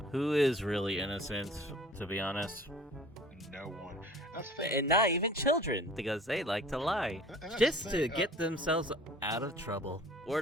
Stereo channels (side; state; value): both; normal; correlation 0.47